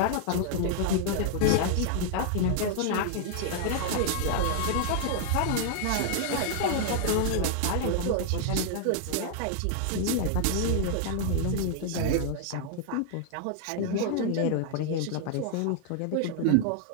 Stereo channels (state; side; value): different; both; correlation 0.00